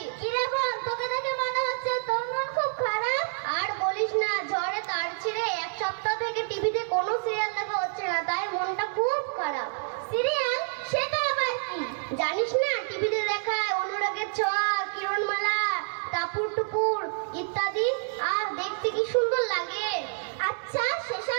কিরে বোন, তোকে দেখে মনে হচ্ছে তোর মন খুব খারাপ। আর বলিস না, ঝড়ে তার ছিঁড়ে এক সপ্তাহ থেকে টিভিতে কোনো সিরিয়াল দেখা হচ্ছে না, তাই মনটা খুব খারাপ। সিরিয়াল? সেটা আবার কি? জানিস না, টিভিতে দেখায় অনুরাগের ছোঁয়া, কিরণমালা, টাপুর টুপুর ইত্যাদি। আর দেখতে কি সুন্দর লাগে। আচ্ছা,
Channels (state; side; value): silent; left; 59 dB below the other